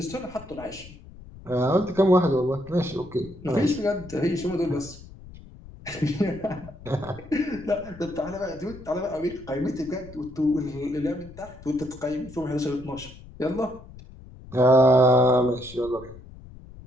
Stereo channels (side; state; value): left; noise; rumble, 18 dB below the sound